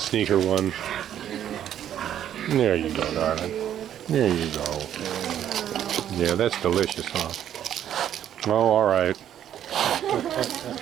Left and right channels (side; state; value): left; quieter; 10.5 dB